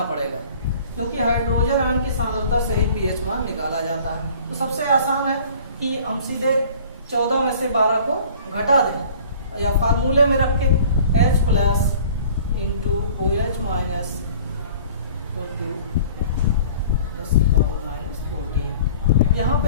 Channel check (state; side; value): inverted; both; correlation -0.48